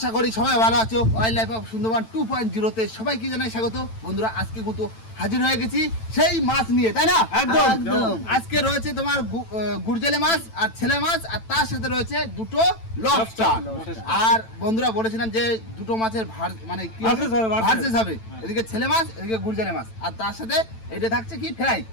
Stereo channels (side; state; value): right; late; 9.0 ms